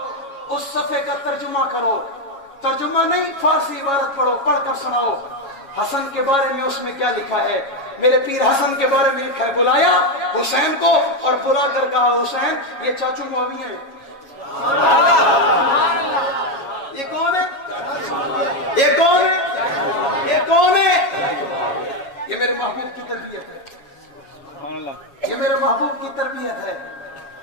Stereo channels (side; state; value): right; late; 7.3 ms